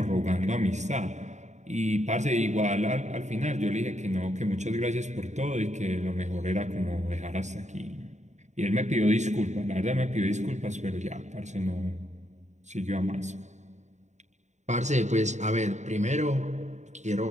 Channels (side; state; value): left; late; 0.34 ms